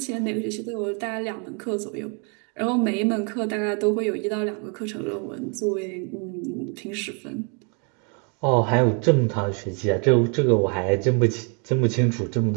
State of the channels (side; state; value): left; quieter; 36.8 dB